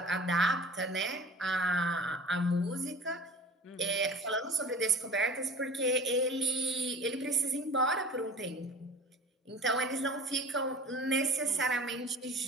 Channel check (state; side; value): normal; both; correlation 0.42